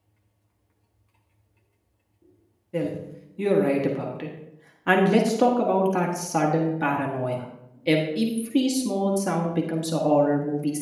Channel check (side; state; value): both; identical; correlation 1.00